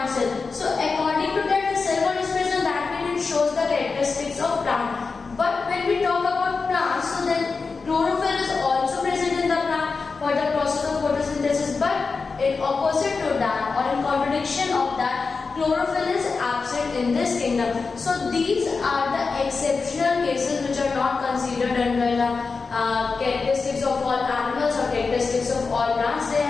cell. So according to that, the cell wall is present, that means it shows the characteristics of plant. But when we talk about plants, so then chlorophyll is also present in the plant for the process of photosynthesis. But in opposite to that, or in contradiction of that, chlorophyll is absent in this kingdom. So these are the exceptional cases which are not considered under the characteristics of all animals or characteristics of all plants. They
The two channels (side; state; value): right; quieter; 4.5 dB